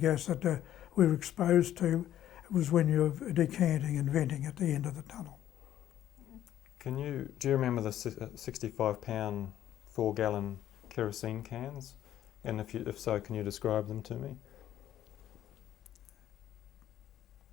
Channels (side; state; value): right; quieter; 11.8 dB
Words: that we were exposed to was when you were decanting and venting at the end of the tunnel. Do you remember the 65-pound 4-gallon kerosene cans? And if so, can you describe them to me?